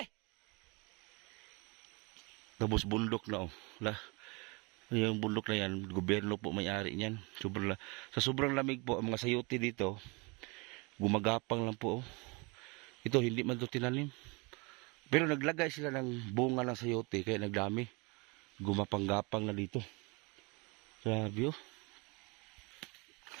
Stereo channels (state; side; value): quieter; left; 28.4 dB